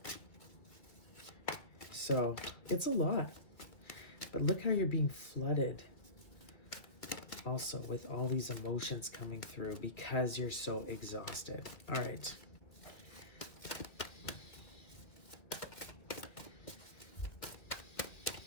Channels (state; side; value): late; right; 2.2 ms